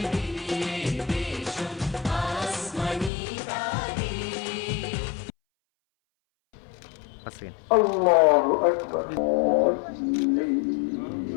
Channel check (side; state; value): right; drops out; at 3.1 s